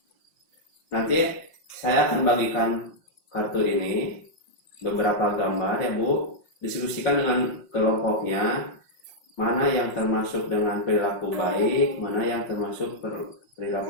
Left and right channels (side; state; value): right; late; 5.7 ms